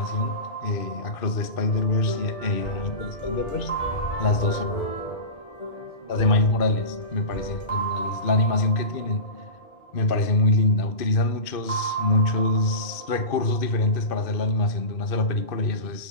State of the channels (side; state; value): right; late; 2.5 ms